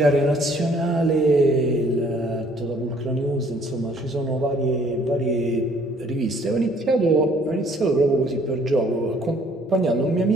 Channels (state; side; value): normal; both; correlation 0.60